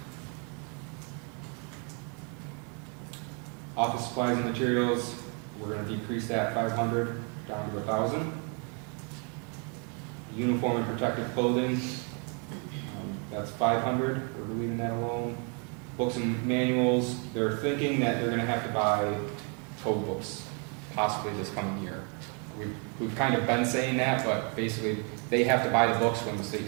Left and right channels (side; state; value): left; quieter; 37.0 dB